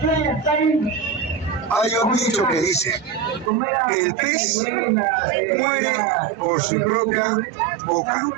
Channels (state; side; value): drops out; left; at 3.5 s